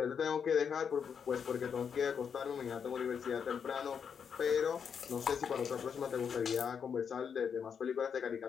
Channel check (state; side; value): quieter; right; 7.0 dB